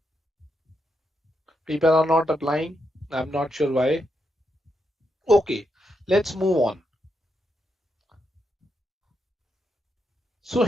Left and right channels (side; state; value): both; normal; correlation 0.82